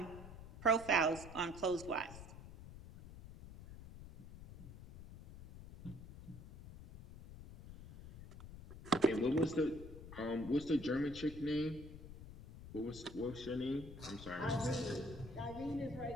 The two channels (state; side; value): noise; left; rumble, 14 dB below the sound